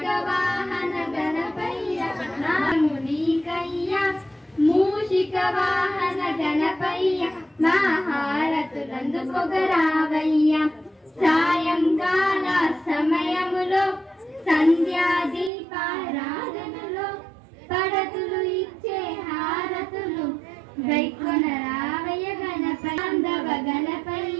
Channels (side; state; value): left; drops out; at 15.5 s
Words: వాహన గణపయ్య మునికయ్య మూషిక వాహన గణపయ్య మహారతులందుకొగరావయ్య. సాయంకాల సమయములో సంధ్యాదీపారాధనలో పడతులు ఇచ్చే హారతులు గైకొనరావయ్య గణపయ్య.